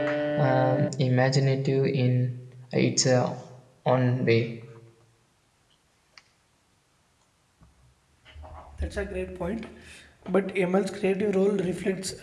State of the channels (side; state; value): both; identical; correlation 1.00